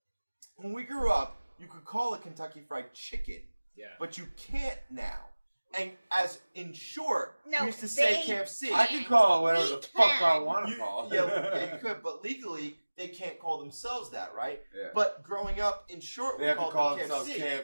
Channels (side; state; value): both; inverted; correlation -1.00